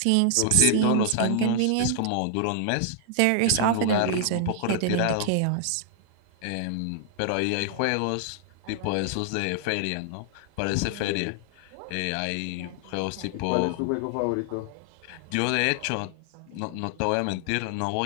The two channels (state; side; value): different; both; correlation 0.00